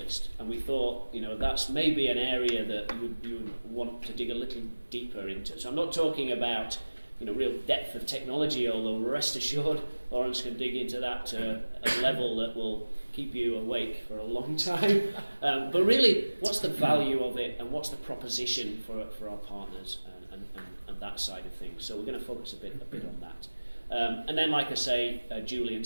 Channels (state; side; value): inverted; both; correlation -1.00